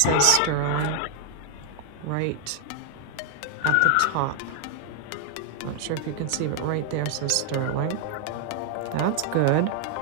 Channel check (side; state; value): both; different; correlation 0.00